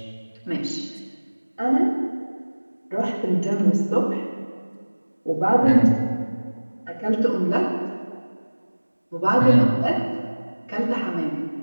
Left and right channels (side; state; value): both; inverted; correlation -1.00